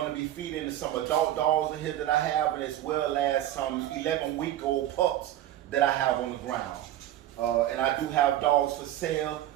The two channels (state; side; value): quieter; left; 12.9 dB